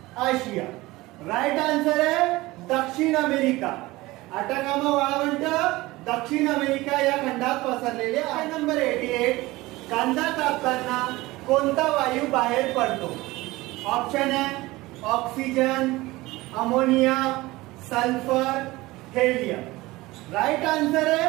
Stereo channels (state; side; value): quieter; left; 19.9 dB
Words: आशिया। राइट आंसर है दक्षिण अमेरिका। अटाकामा वाळवंट दक्षिण अमेरिका या खंडात पसरलेले आहे। नंबर 88 कांदा कापताना कोणता वायू बाहेर पडतो। ऑप्शन है oxygen ammonia sulphur helium. Right answer